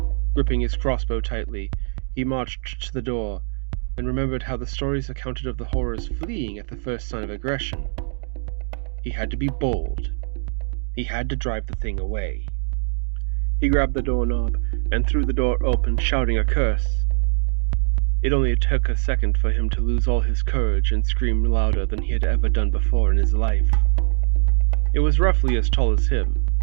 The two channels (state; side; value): silent; left; 64 dB below the other